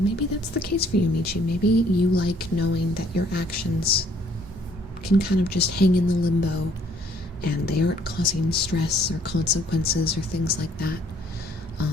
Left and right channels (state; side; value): normal; both; correlation 0.62